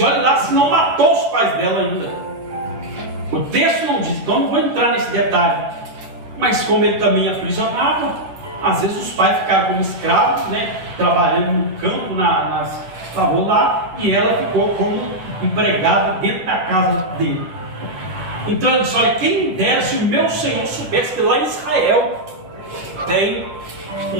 lá se não matou os pais dela ainda. O texto não diz, então não vou entrar nesse detalhe. Mas como ele também aprisionava, às vezes os pais ficaram como escravos, né, trabalhando no campo, estavam lá, e ela ficou como empregada dentro da casa dele. Então ele disse: olha, quem dera se o meu Senhor soubesse que lá em Israel tem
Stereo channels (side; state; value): left; late; 11 ms